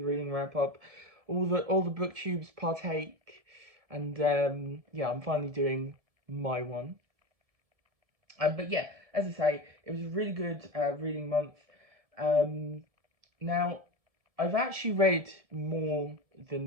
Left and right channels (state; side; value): late; left; 1.7 ms